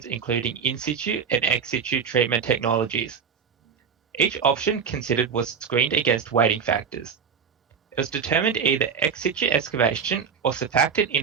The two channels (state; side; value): quieter; left; 6.6 dB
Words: including in situ and ex situ treatment technologies. Each option considered was screened against weighting factors. It was determined either ex situ excavation or surfactant